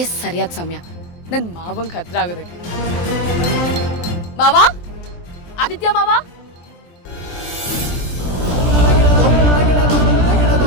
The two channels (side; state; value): right; late; 23 ms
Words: ಸರಿಯಾದ ಸಮಯ ನನ್ನ ಮಾವಂಗೆ ಹತ್ರ ಆಗೋದಕ್ಕೆ. ಮಾವ, ಆದಿತ್ಯ ಮಾವ.